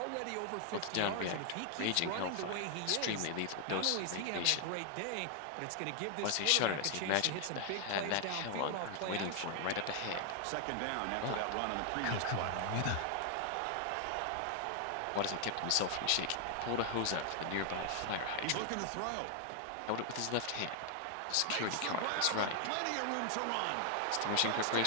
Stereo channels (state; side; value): different; both; correlation 0.00